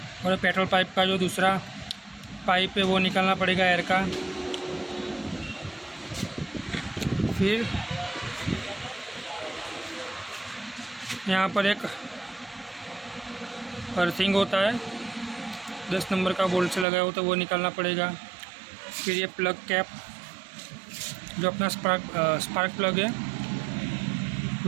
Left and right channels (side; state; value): left; drops out; at 16.9 s